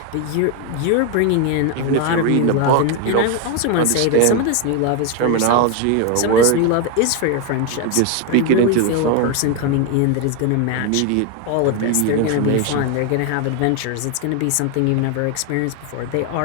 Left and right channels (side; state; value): both; different; correlation 0.01